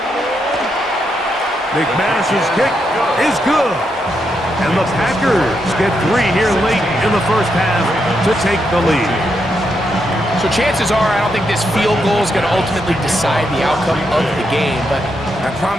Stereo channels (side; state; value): both; normal; correlation 0.81